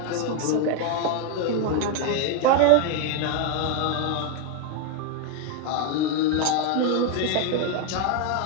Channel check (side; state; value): both; different; correlation 0.01